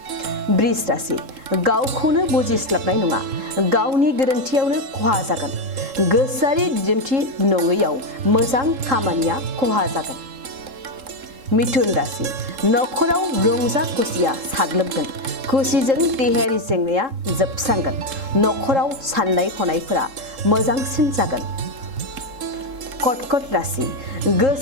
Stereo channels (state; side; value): late; left; 3.7 ms